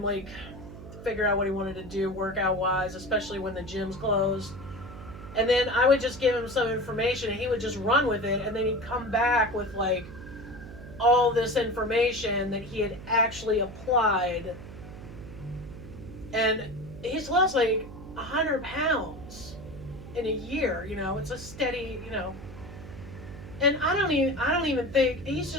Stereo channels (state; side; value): noise; right; hum, 14 dB below the sound